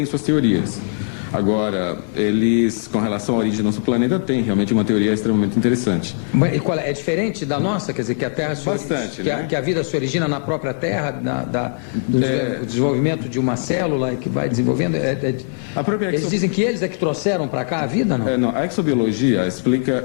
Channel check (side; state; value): right; silent; 66 dB below the other